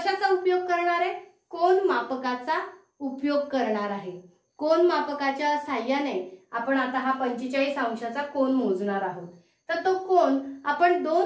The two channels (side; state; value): both; identical; correlation 1.00